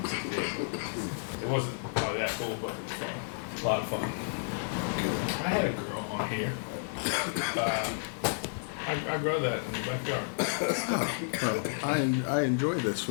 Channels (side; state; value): right; silent; digital silence